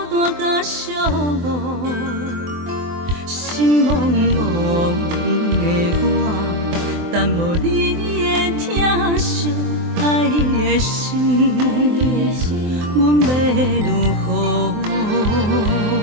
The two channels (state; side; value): late; left; 24 ms